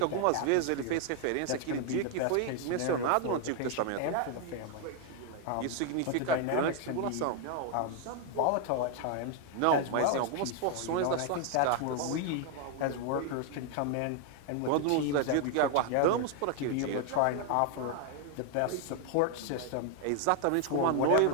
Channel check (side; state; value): both; different; correlation 0.00